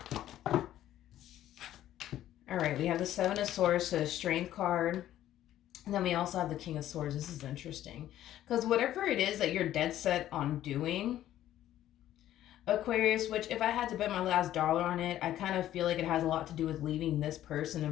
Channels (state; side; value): quieter; right; 12.7 dB